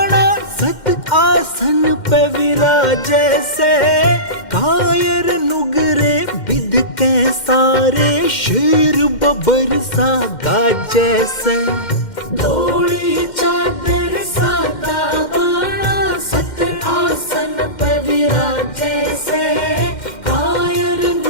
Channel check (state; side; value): late; right; 2.1 ms